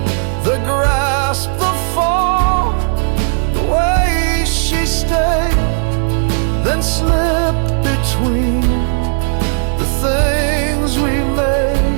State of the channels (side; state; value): left; silent; digital silence